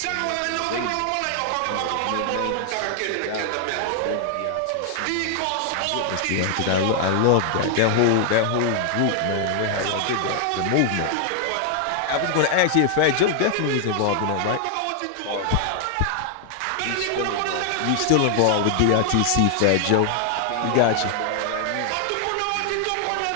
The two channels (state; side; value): different; both; correlation 0.00